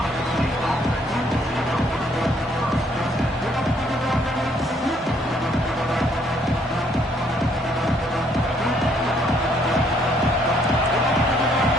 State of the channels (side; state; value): both; normal; correlation 0.67